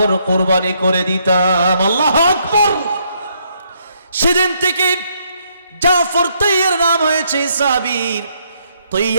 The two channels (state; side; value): inverted; both; correlation -0.73